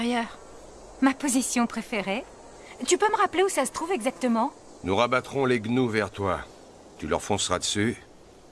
Ma position préférée. Tu peux me rappeler où ça se trouve exactement? Nous rabattrons les gnous vers toi. Tu leur fonceras dessus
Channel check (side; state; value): both; identical; correlation 1.00